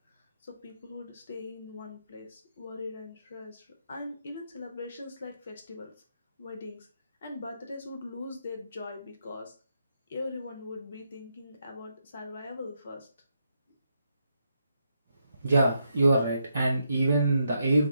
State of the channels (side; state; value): both; inverted; correlation -0.80